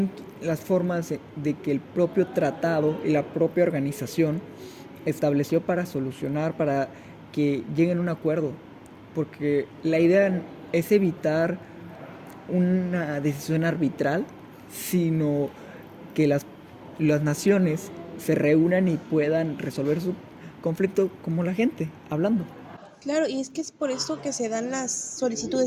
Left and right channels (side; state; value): both; identical; correlation 1.00